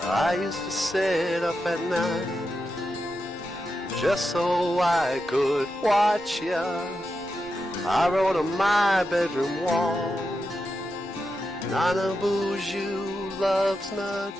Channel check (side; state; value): both; normal; correlation 0.88